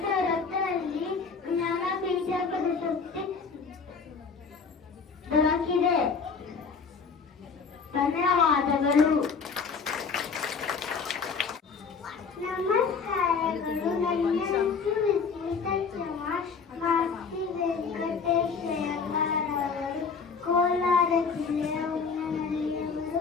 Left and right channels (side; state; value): right; quieter; 5.3 dB